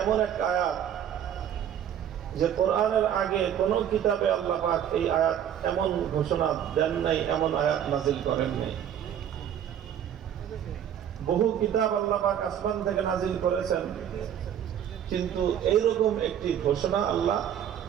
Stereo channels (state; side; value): quieter; left; 9.7 dB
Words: এমন এক আয়াত যে কোরআনের আগে কোন কিতাবে আল্লাহ পাক এই আয়াত এমন ঘোষণা দেন নাই, এমন আয়াত নাজিল করেন নাই। বহু কিতাব আল্লাহ পাক আসমান থেকে নাজিল করেছেন, কিন্তু এইরকম একটি ঘোষণা আল্লাহ